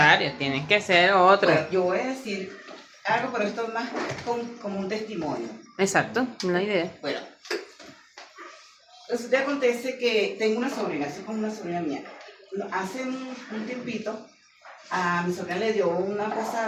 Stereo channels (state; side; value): identical; both; correlation 1.00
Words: tienen que ser otro. Bueno, yo voy a decir algo, pero esto es más como un testimonio. Exacto, una idea. Bueno, resulta que acontece que tengo una sobrina, soy como una sobrina mía. Hace un tiempito, a mi sobrina le dio una